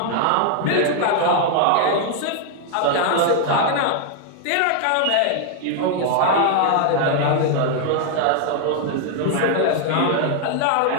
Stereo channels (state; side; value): different; both; correlation 0.00